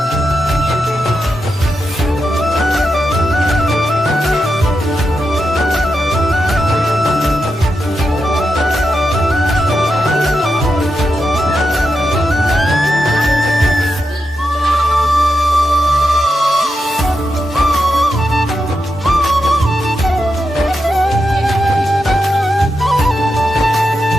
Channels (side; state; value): both; normal; correlation 0.87